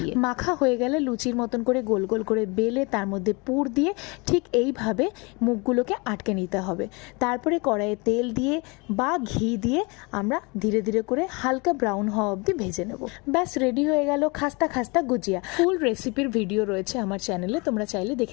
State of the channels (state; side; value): quieter; right; 28.5 dB